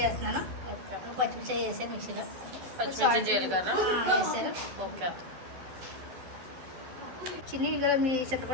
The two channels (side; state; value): left; late; 12 ms